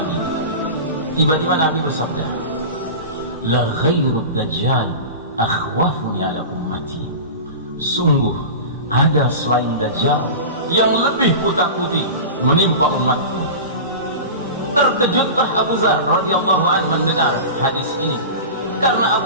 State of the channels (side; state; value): both; inverted; correlation -0.30